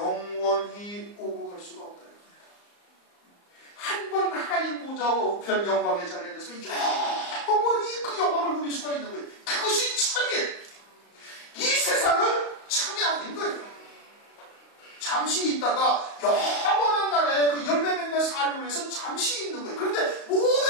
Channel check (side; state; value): right; late; 35 ms